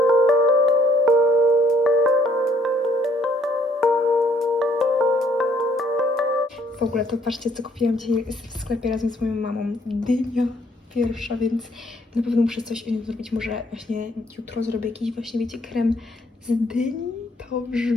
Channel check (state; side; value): normal; both; correlation 0.66